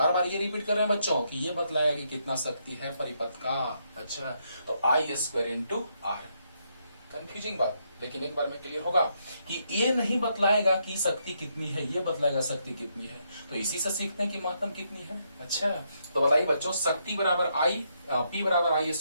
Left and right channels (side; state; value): both; inverted; correlation -0.77